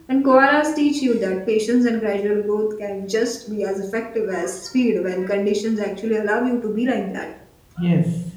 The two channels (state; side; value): identical; both; correlation 1.00